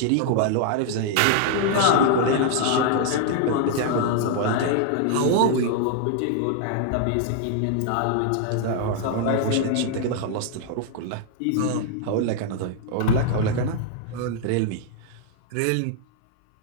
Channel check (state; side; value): different; both; correlation 0.00